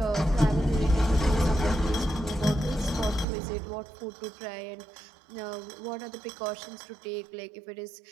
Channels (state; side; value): drops out; left; at 3.2 s